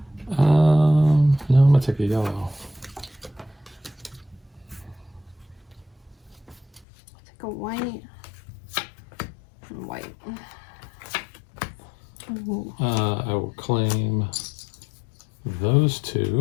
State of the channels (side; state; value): right; drops out; at 6.9 s